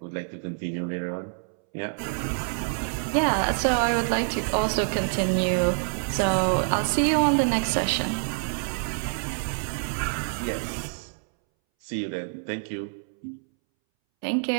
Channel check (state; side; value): silent; left; 60 dB below the other